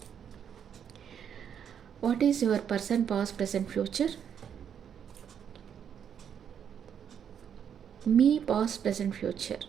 What is your person past, present, future? మీ పాస్ట్, ప్రెజెంట్, ఫ్యూచర్.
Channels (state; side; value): quieter; left; 8.3 dB